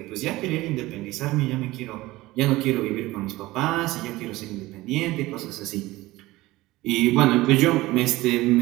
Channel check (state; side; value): quieter; left; 18.7 dB